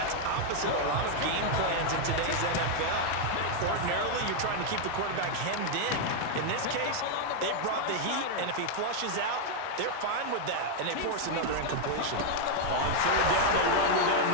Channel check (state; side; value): different; both; correlation 0.00